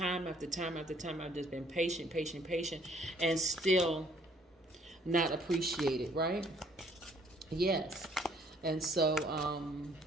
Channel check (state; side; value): normal; both; correlation 0.62